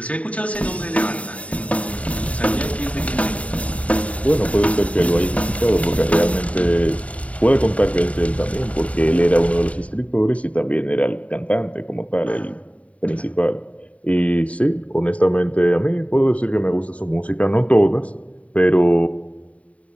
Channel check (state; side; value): late; right; 0.066 ms